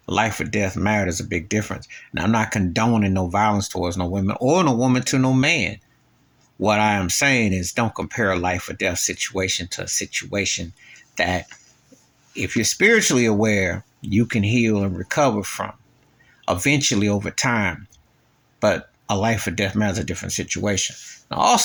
life or death matter is a big difference. Now, I'm not condoning no violence towards no women or no woman to no man. What I am saying is don't compare a life or death situation to a situation that, if you're spiritually aware, you can heal and recover from eventually over time. But a life or death matter is a different situation. Now,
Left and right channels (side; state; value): both; identical; correlation 1.00